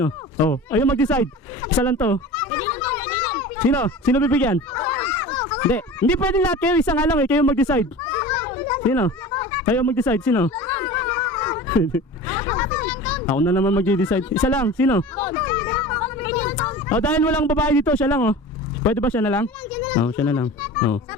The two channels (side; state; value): both; normal; correlation 0.36